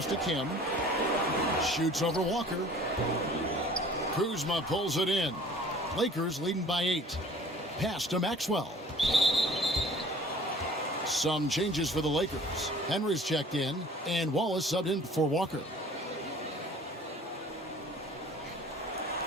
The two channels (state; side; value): normal; both; correlation 0.49